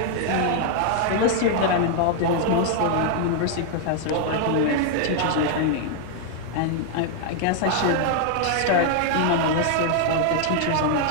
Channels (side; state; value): both; different; correlation 0.00